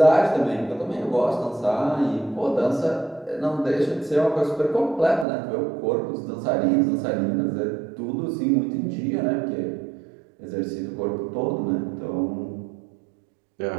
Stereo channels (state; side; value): drops out; left; at 5.2 s